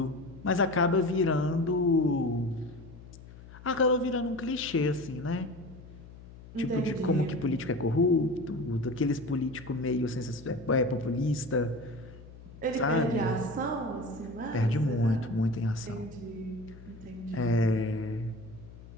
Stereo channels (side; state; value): left; noise; hum, 18 dB below the sound